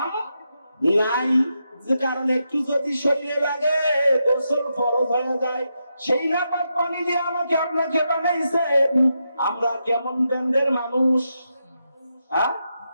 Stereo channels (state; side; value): inverted; both; correlation -0.85